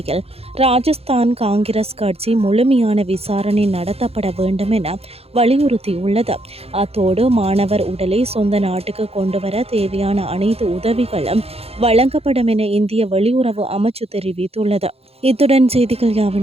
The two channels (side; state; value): left; late; 0.29 ms